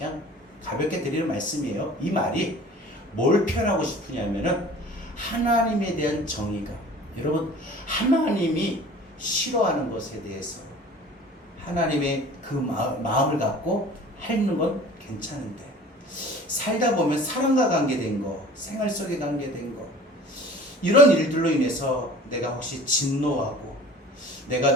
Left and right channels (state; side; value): normal; both; correlation 0.45